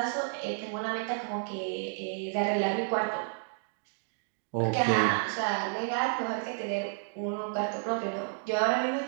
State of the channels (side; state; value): left; silent; digital silence